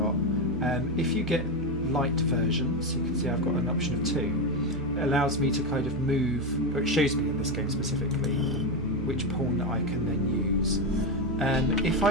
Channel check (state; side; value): normal; both; correlation 0.11